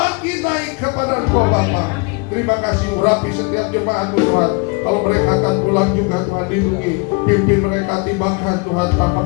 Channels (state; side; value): quieter; right; 30.5 dB